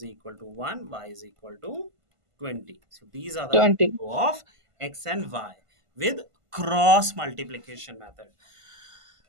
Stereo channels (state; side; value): late; left; 1.5 ms